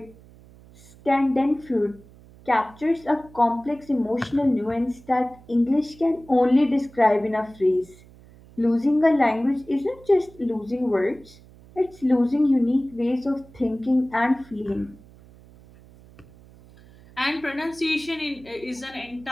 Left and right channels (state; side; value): noise; right; hum, 24 dB below the sound